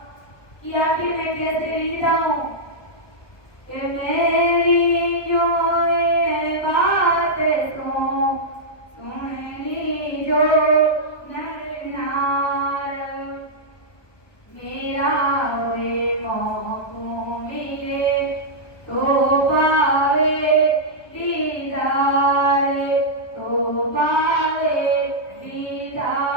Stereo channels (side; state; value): right; late; 1.2 ms